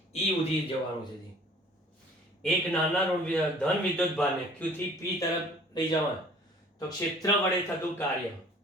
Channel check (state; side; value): normal; both; correlation 0.52